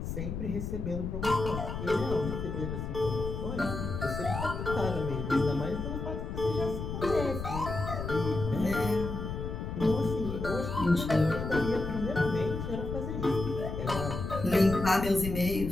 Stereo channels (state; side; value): noise; left; rumble, 5 dB below the sound